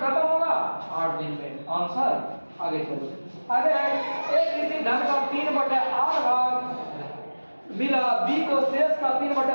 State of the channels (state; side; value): inverted; both; correlation -1.00